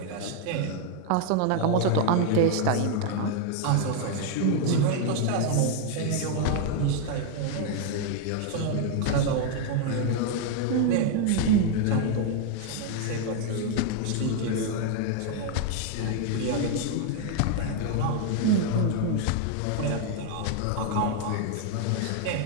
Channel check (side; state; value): both; different; correlation 0.01